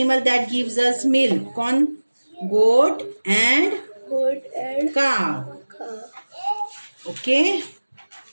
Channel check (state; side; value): inverted; both; correlation -1.00